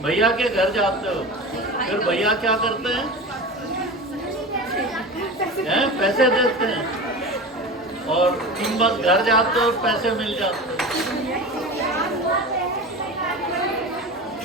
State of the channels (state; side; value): normal; both; correlation 0.30